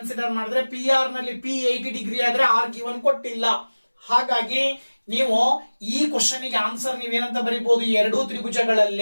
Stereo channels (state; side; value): inverted; both; correlation -1.00